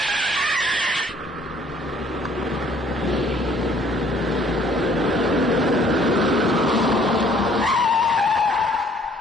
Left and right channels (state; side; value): normal; both; correlation 0.59